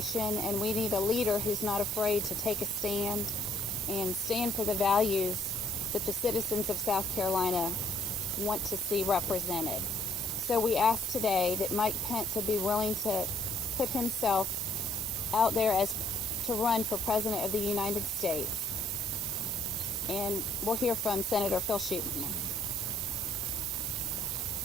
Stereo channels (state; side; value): normal; both; correlation 0.63